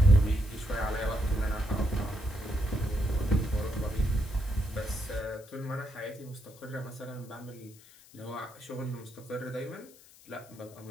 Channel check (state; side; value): noise; left; hiss, 23 dB below the sound